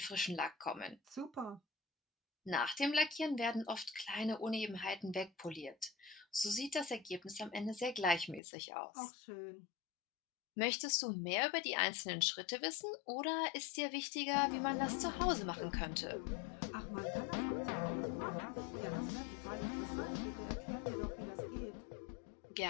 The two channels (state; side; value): drops out; right; at 8.4 s